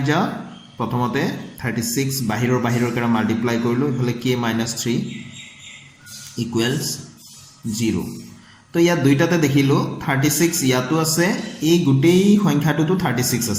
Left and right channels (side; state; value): both; identical; correlation 1.00